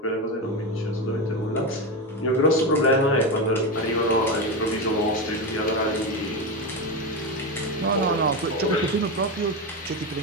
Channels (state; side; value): normal; both; correlation 0.15